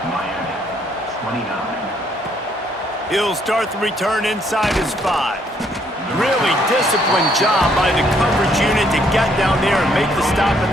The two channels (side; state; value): both; normal; correlation 0.68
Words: He'll start the return inside his 5. Really disciplined job by the coverage unit to get down there and make the stop